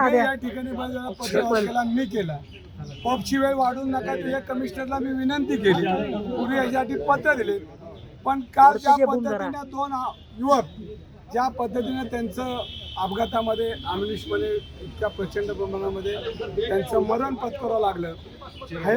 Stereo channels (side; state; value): both; identical; correlation 1.00